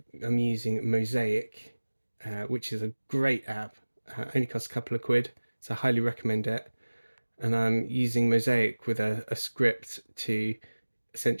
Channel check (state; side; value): inverted; both; correlation -1.00